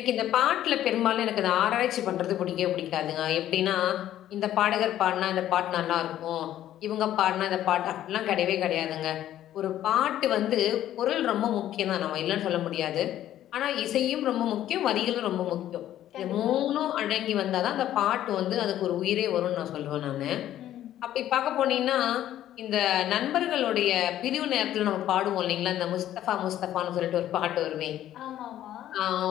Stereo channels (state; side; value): quieter; right; 12.3 dB